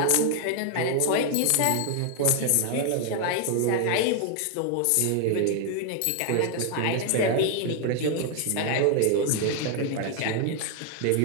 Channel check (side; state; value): both; different; correlation 0.00